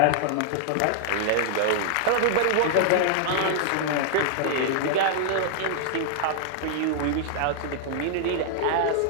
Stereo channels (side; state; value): both; different; correlation -0.01